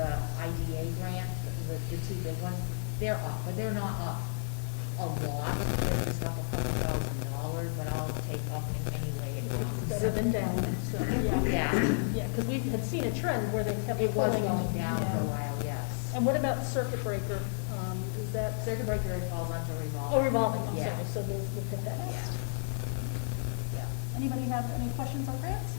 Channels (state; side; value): silent; right; 56 dB below the other